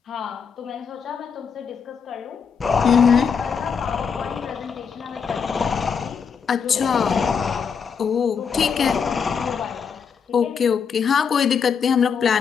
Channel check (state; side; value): quieter; right; 6.4 dB